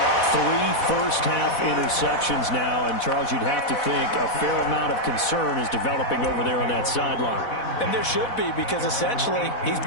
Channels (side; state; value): right; late; 4.1 ms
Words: 3 first-half interceptions now, and Charles, you'd have to think a fair amount of concern is developing over there on that sideline. And there should be, because essentially he's